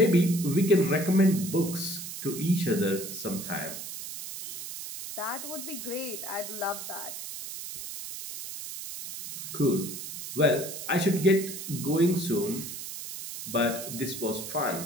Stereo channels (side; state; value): right; noise; hiss, 8 dB below the sound